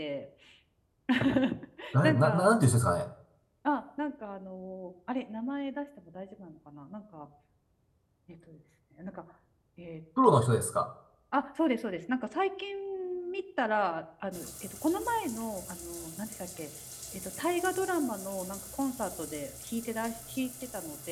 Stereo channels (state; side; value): identical; both; correlation 1.00